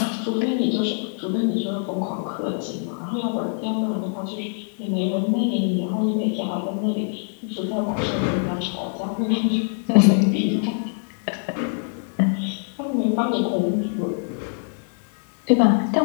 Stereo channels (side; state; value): right; silent; 63 dB below the other